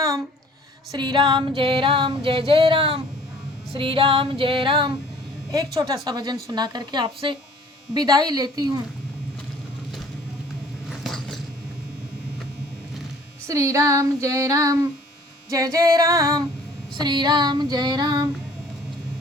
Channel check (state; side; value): normal; both; correlation 0.53